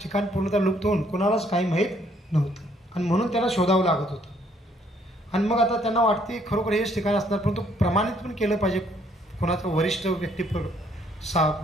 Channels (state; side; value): normal; both; correlation 0.66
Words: पूर्णतः लुप्त होऊन कोणालाच काही माहीत नव्हतं आणि म्हणून त्यांना शोधावं लागत होतं. आणि मग आता त्यांना वाटते खरोखर हेच ठिकाण असणार, परंतु प्रमाणित पण केलं पाहिजे कोणाचं वरिष्ठ व्यक्ती